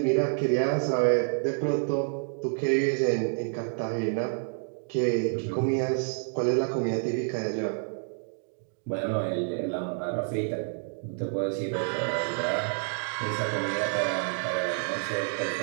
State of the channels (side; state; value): left; silent; digital silence